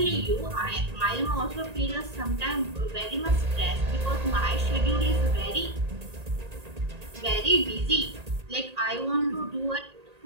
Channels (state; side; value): late; left; 1.8 ms